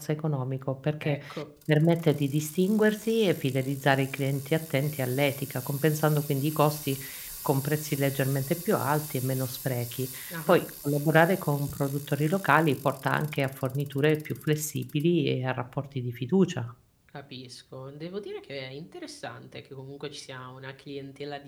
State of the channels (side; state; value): both; identical; correlation 1.00